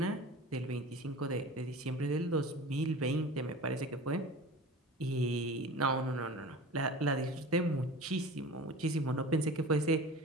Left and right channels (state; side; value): normal; both; correlation 0.36